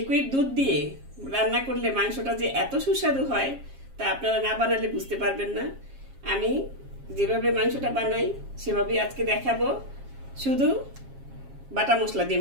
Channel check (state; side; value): late; left; 7.4 ms